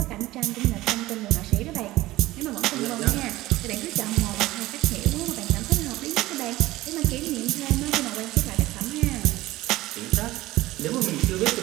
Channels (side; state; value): left; quieter; 17.5 dB